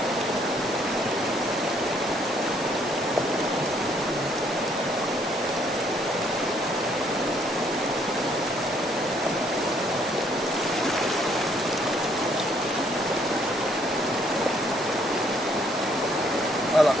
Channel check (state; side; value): normal; both; correlation 0.67